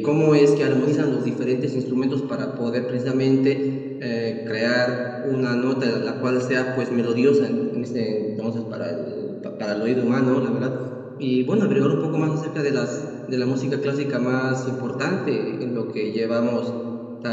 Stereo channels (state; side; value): identical; both; correlation 1.00